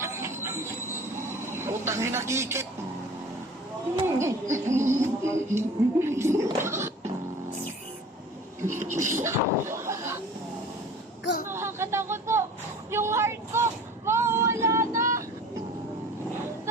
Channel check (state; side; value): normal; both; correlation 0.44